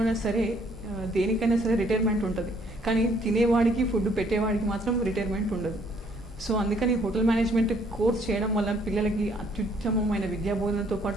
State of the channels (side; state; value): both; normal; correlation 0.64